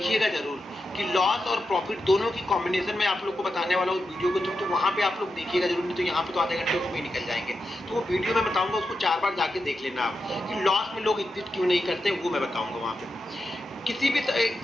जरूर कि लॉस और प्रॉफिट दोनों की कॉम्बिनेशन में आप लोग को बताने वाला हूँ उस वीडियो को। तो वहाँ पे आप लोग देखिएगा जरूर, नहीं तो यहाँ पे तो आधे घंटे उसमें निकल जाएंगे। तो वो वीडियो मैं बताऊंगा, उसको 4 बार जाके देख लेना आप कि लॉस में लोग एग्जिट क्यों नहीं करते, वो मैं बताऊंगा वहाँ पे। किसी भी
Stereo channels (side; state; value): both; normal; correlation 0.88